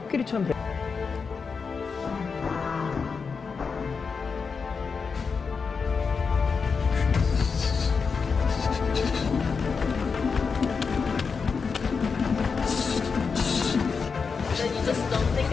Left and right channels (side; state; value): right; quieter; 5.3 dB